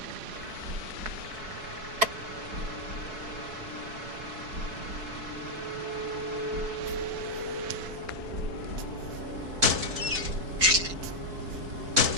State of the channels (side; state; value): left; late; 4.6 ms